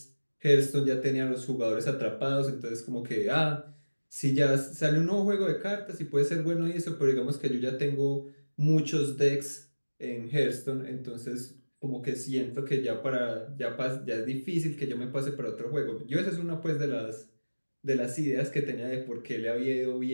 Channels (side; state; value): both; inverted; correlation -1.00